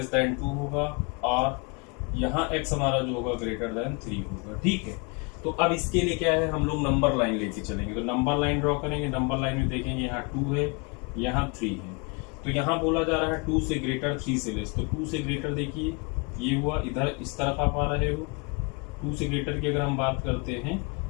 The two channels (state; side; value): quieter; right; 31.7 dB